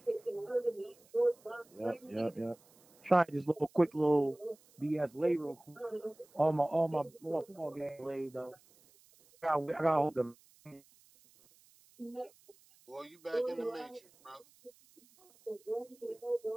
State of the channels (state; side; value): noise; right; hiss, 29 dB below the sound